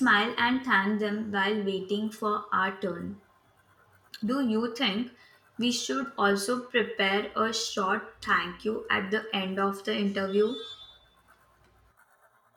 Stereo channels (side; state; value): both; identical; correlation 1.00